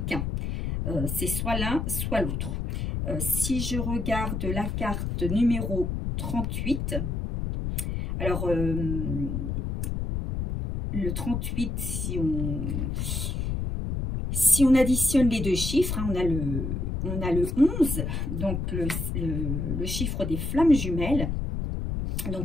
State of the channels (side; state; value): left; noise; rumble, 2 dB below the sound